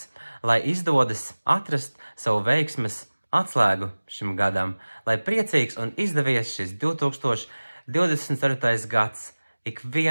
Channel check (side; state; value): both; inverted; correlation -1.00